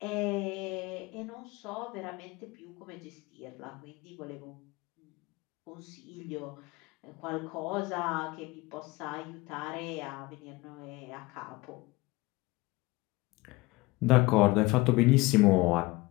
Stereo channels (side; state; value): right; quieter; 22.2 dB